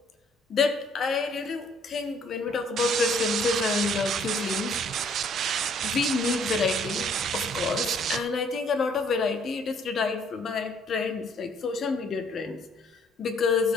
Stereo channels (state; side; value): normal; both; correlation 0.62